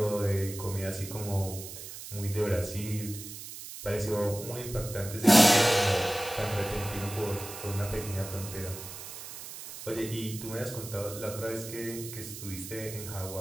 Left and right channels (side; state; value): right; noise; hiss, 11 dB below the sound